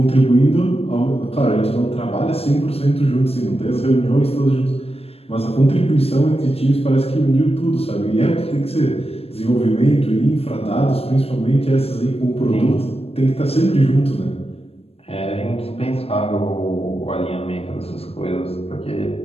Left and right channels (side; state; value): right; late; 0.28 ms